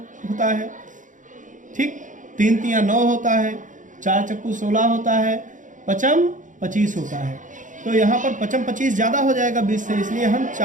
होता है, ठीक, 3 तियां 9 होता है, 4 चक्कू 16 होता है, पचम 25 होता है। तो यहाँ पर पचम 25 ज़्यादा हो जाएगा 20 से, इसलिए हम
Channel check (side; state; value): left; late; 0.37 ms